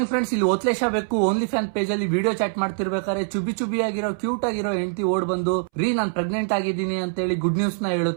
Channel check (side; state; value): left; silent; 63 dB below the other